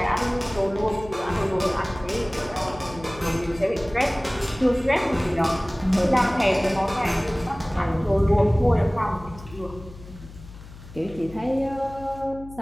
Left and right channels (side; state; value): left; noise; hum, 17 dB below the sound